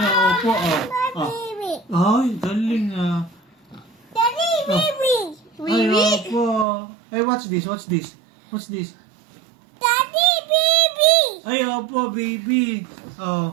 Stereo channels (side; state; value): left; drops out; at 6.7 s